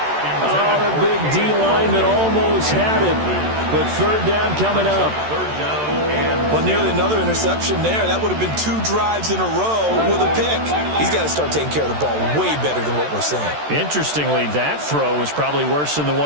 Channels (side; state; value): left; late; 13 ms